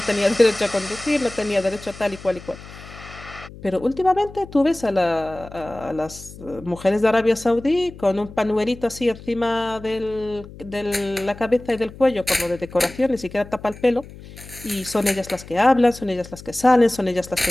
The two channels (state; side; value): noise; left; hum, 17 dB below the sound